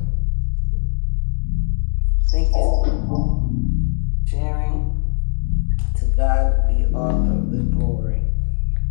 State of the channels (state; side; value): silent; right; digital silence